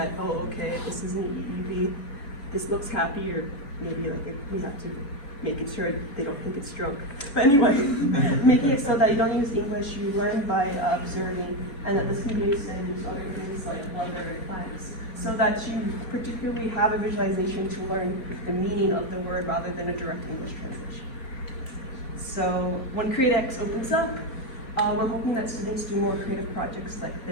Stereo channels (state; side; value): late; right; 3.5 ms